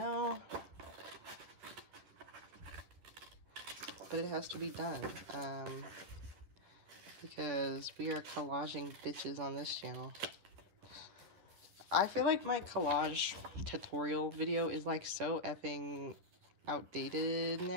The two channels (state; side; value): late; left; 10 ms